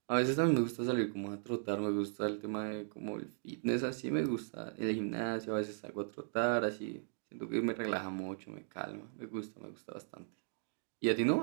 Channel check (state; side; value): silent; left; digital silence